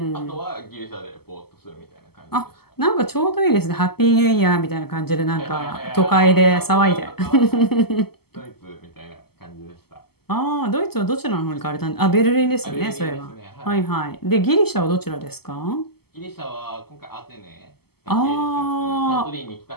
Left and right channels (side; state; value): right; late; 0.96 ms